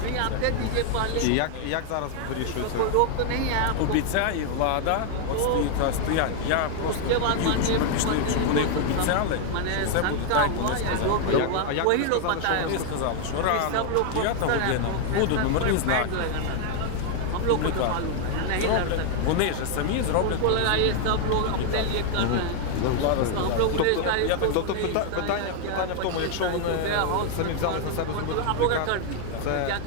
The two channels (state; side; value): different; both; correlation 0.00